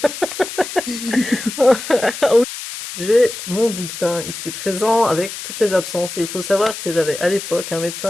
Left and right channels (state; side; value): noise; left; hiss, 9 dB below the sound